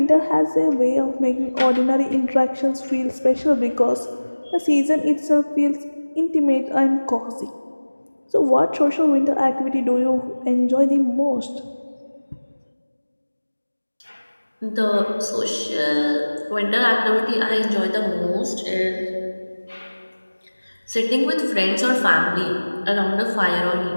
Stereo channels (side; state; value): both; inverted; correlation -1.00